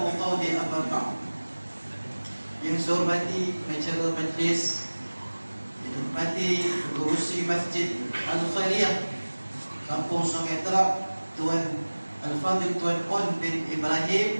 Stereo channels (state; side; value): inverted; both; correlation -1.00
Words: qawli, amma ba'd. Yang saya hormati pengacara majlis, yang hormati pengurusi Masjid Al-Khairiyah Kampung Sungai Terap, Tuan Al-Fadhil Tuan On bin